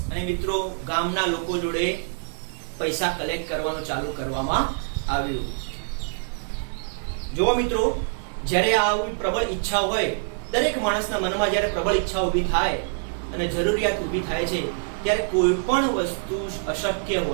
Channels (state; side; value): silent; left; digital silence